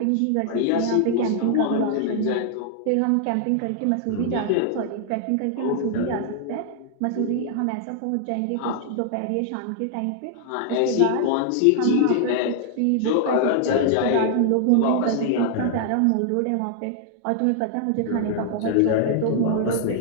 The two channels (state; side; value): different; both; correlation 0.00